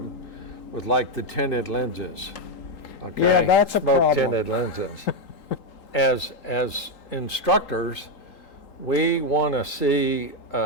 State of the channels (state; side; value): late; right; 3.8 ms